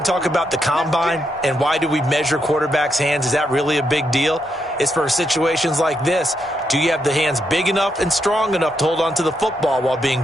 talk about the combine and why do we measure quarterbacks' hands. Is that really a big deal? It's for situations like this. Do you have the hands big enough and strong enough to hold on to the football while being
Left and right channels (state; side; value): normal; both; correlation 0.80